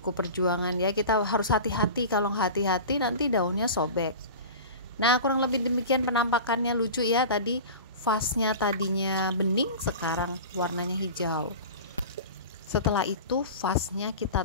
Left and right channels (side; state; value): both; inverted; correlation -0.33